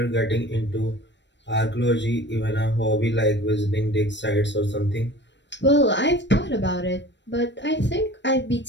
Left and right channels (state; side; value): late; right; 0.52 ms